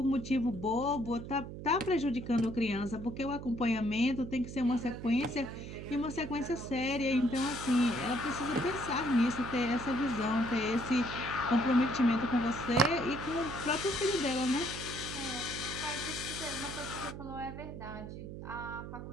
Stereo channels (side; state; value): right; noise; hum, 9 dB below the sound